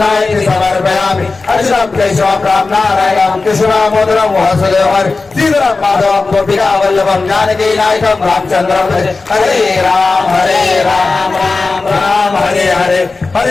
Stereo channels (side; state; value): right; quieter; 3.8 dB